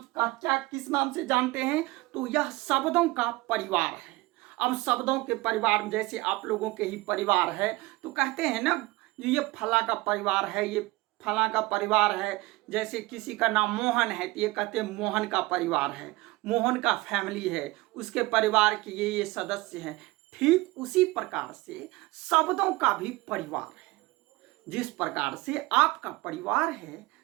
नाम से जानते हैं? तो यह शब्दों का परिवार है। अब शब्दों के परिवार में जैसे आप लोगों के ही परिवार है, तो कहते हैं ना ये फला का परिवार है, ये फला का परिवार है। जैसे किसी का नाम मोहन है तो ये कहते हैं मोहन का परिवार है, मोहन का फैमिली है, उसके परिवार के ये सदस्य हैं। ठीक उसी प्रकार से शब्दों का भी परिवार है। जिस प्रकार से आपका परिवार है,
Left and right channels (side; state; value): left; quieter; 21.4 dB